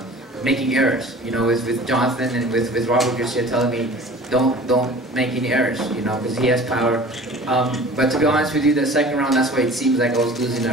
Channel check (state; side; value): normal; both; correlation 0.43